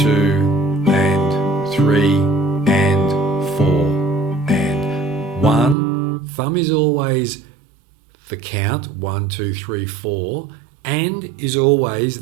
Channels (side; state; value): left; drops out; at 5.8 s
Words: and 3 and 4 and 1. Thumb is always the count, 1, 2, 3, 4, and is